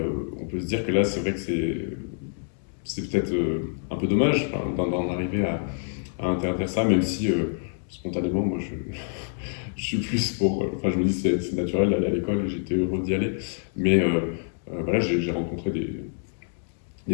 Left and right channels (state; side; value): silent; right; digital silence